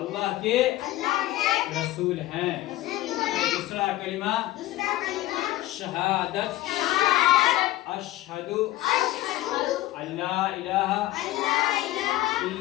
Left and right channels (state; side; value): quieter; right; 16.4 dB